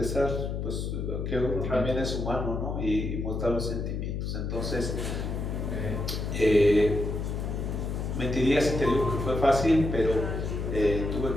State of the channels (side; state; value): left; noise; hum, 3 dB below the sound